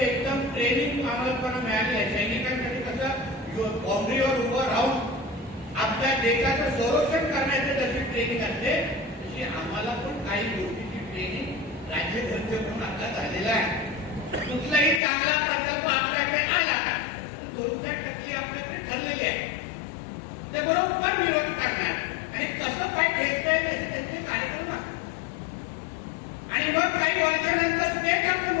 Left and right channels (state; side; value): drops out; right; at 15.0 s